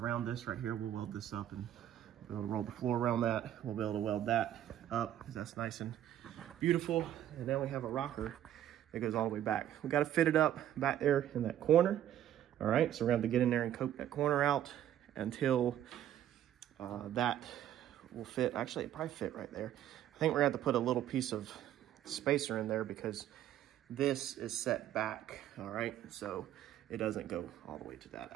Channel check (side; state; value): left; quieter; 11.4 dB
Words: this right here, we'll weld this up and be able to roll the floor around that. We'll be able to weld that up because that's nice and beautiful. And then we have a rocker that goes all the way back. We got to fit it up back there in that corner. All right, so we're going to have to get in there and coat that corner out until that will fit. Actually, it probably fit right there. I think we're going to have to put a little piece of spacer in there because this is set back. All right, so it doesn't go all the way to that.